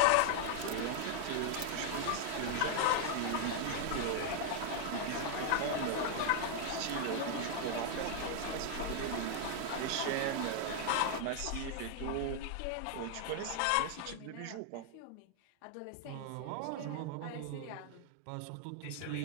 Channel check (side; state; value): both; different; correlation 0.00